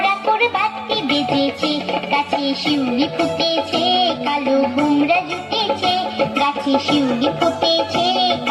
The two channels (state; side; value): identical; both; correlation 1.00